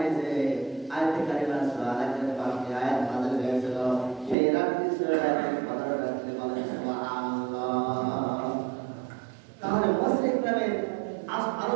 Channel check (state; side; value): drops out; left; at 4.4 s